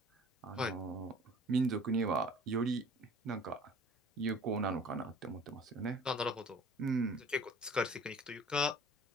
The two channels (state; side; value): normal; both; correlation 0.48